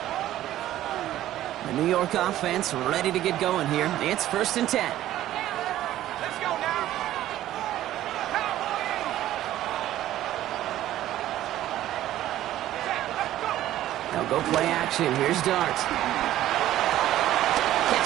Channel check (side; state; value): left; quieter; 13.5 dB